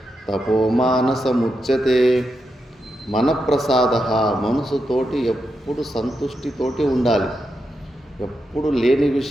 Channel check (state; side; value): normal; both; correlation 0.86